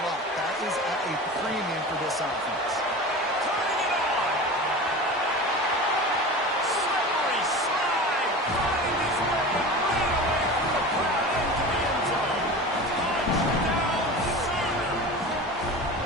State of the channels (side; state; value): both; normal; correlation 0.32